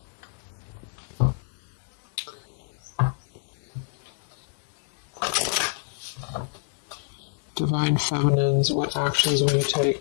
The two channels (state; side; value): silent; right; digital silence